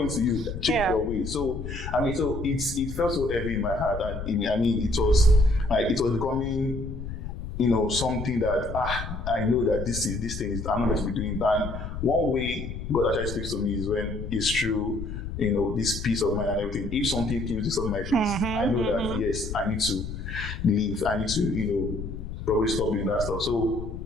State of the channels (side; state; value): left; noise; rumble, 7 dB below the sound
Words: to you, change your way. So, I mean, it felt so heavy in my heart, and it was becoming, something that I know that this thing is I'm not going to be doing. And one way God actually speaks to me is when it's true, this peace of mind and everything. If something comes to my face, I know that yes, I need to leave. I need to, probably stop doing that stuff. So